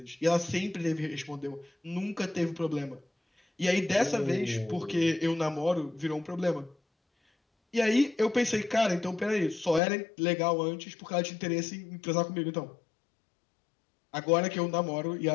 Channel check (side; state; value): right; drops out; at 9.8 s